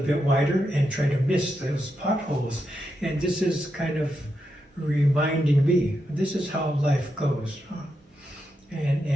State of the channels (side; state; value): both; normal; correlation 0.85